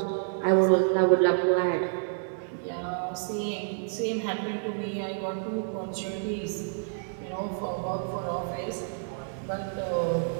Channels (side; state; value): left; silent; digital silence